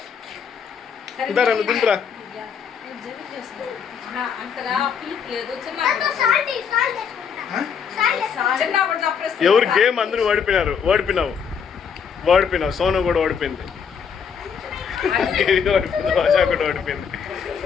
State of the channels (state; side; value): quieter; right; 6.9 dB